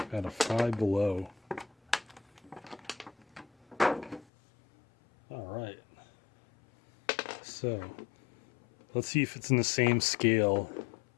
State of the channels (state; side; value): drops out; right; at 4.2 s